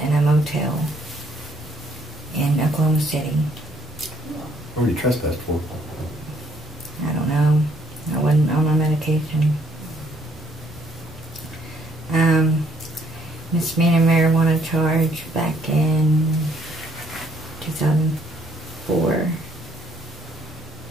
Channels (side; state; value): both; normal; correlation 0.67